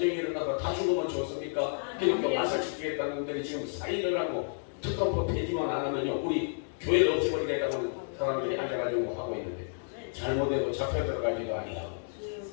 일어나서 다 죽으면 좋습니까? 그러니까 마사 지키겠다는 분들이 지금 사인을 하고 특검법 폐지만 안 하면요 우리 교회를 없애버리겠다는 사람들이 앉아가지고 하고 있는데 잘못해도 잡혀 들어가지도 아니하고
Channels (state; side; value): silent; right; digital silence